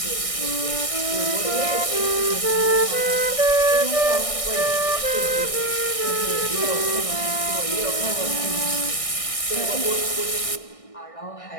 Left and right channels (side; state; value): right; late; 1.6 ms